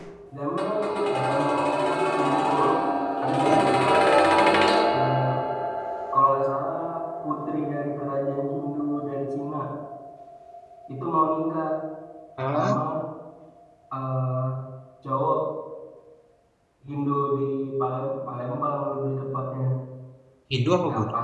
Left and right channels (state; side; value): identical; both; correlation 1.00